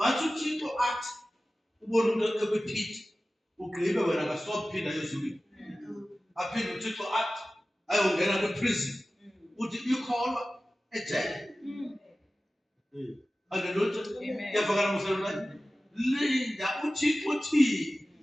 uThixo athi ubona umuntu ekwiphiti ugqibe wena kasophinda ezulwini. Aphinde uThixo athi ayongena kwi-prison. Uthi ikholwa ejele. Hallelujah. Yavakala msalwana. Linda uThixo uthi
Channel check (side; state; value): both; normal; correlation 0.96